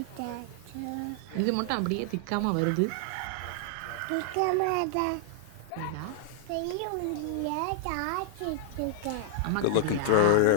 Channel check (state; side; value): different; both; correlation 0.00